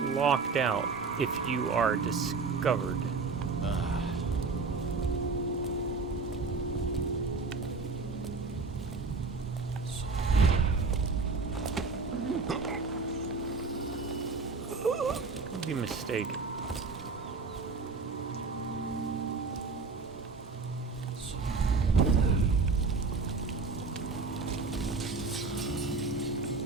locked out if you are discovered. Could be mistaken.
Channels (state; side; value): quieter; left; 4.3 dB